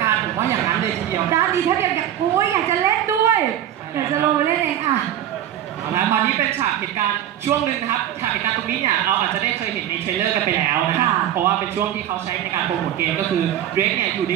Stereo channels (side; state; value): left; quieter; 11.4 dB